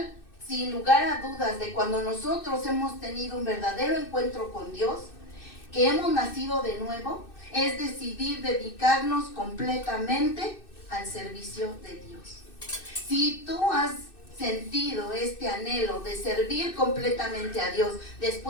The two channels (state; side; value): late; right; 2.6 ms